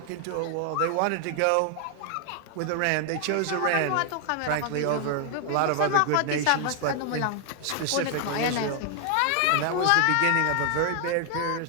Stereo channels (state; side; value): different; both; correlation 0.00